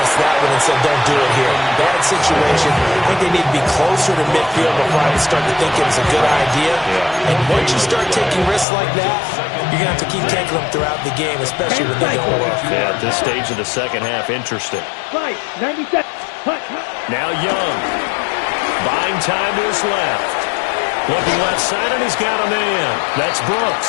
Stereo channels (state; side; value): drops out; right; at 8.7 s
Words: that one and said, don't do it here. Bad situation. I think they need to be closer to midfield before I would start to think it was a good idea. And once you start taking risks like that, you're going to have to keep taking them throughout the game, especially when they don't work. Yeah, at this stage of the 2nd half, interesting. Right, 97. Now Young. Buying time to his left. Looking left side, and he's got a man. That's